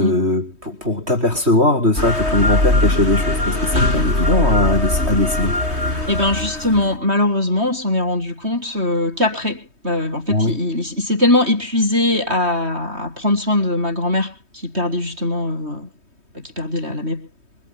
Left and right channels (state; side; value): late; left; 3.2 ms